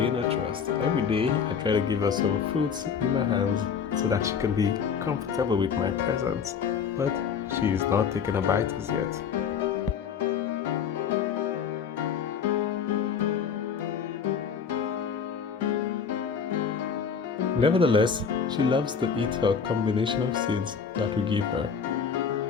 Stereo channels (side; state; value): right; quieter; 6.7 dB